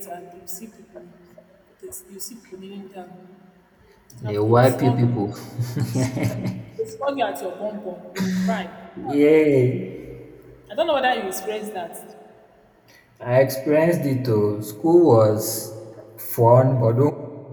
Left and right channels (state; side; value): identical; both; correlation 1.00